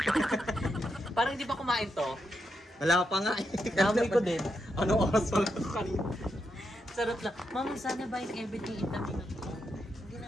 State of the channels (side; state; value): both; normal; correlation 0.83